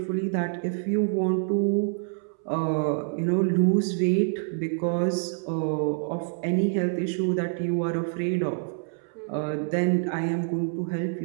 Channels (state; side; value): silent; left; 60 dB below the other